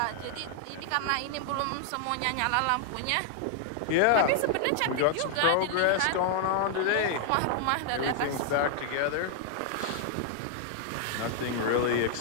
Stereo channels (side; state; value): both; different; correlation 0.00